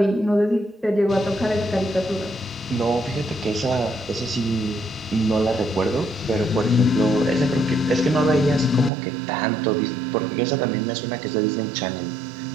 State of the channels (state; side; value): drops out; left; at 8.9 s